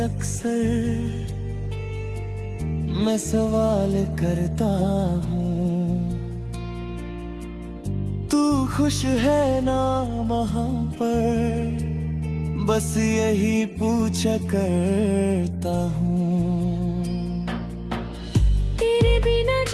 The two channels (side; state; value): both; identical; correlation 1.00